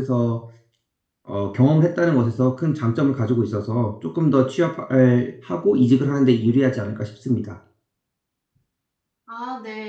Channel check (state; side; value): identical; both; correlation 1.00